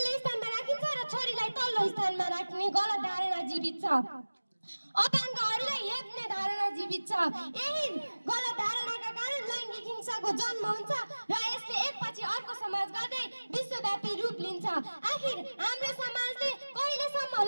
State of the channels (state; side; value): inverted; both; correlation -1.00